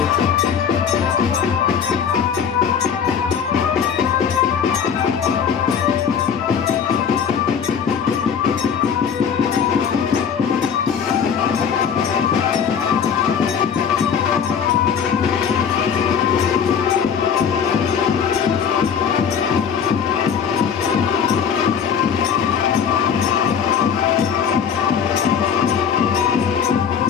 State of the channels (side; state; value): right; quieter; 7.3 dB